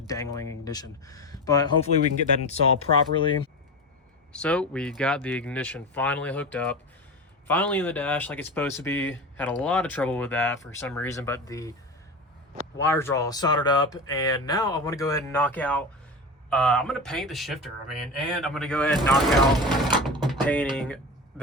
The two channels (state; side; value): normal; both; correlation 0.26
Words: ignition? But hopefully we can get that installed properly. So we got the ignition finally hooked up, finally in the dash like it's supposed to be. Had a lot of trouble with that for some reason, but the wires are all soldered up, and now I want to go ahead and knock out I'm going to paint the shifter, and I'm going to go ahead and knock out painting